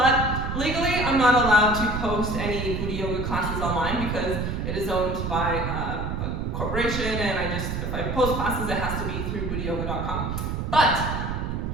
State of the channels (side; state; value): right; noise; rumble, 3 dB below the sound